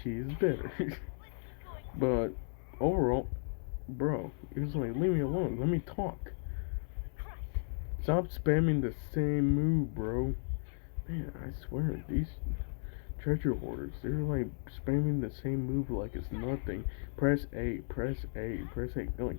she's better. But overall, bro, it was like, leave me alone. Let me talk. Stop spamming the same move, bro. Man, I swear, these treasure hoarders, they're like spamming the same move like it's nothing. Press A, press A, press A. They're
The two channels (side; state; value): right; silent; 54 dB below the other